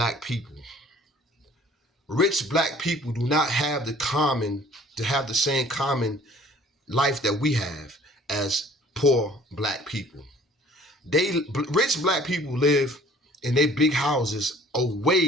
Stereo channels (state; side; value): normal; both; correlation 0.53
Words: people. Rich black people do not have the same common life that we have as poor black people. Rich black people live in their big houses